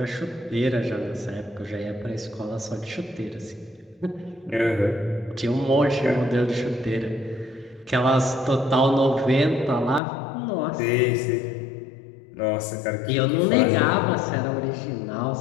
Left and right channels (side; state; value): right; drops out; at 10.0 s